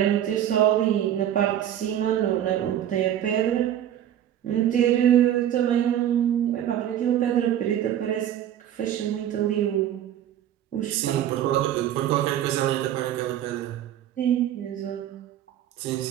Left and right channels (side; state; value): left; quieter; 10.9 dB